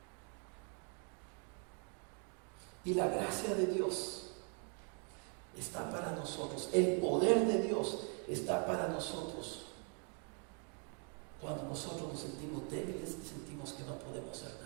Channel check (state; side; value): quieter; left; 39.7 dB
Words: Y la gracia de Dios está para nosotros. El poder de Dios está para nosotros. Cuando nosotros nos sentimos débiles y sentimos que no podemos hacer